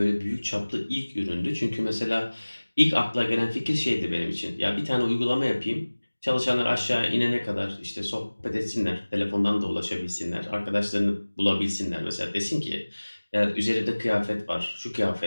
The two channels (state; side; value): inverted; both; correlation -1.00